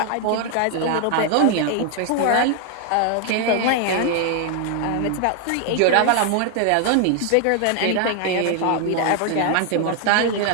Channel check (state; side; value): different; both; correlation 0.00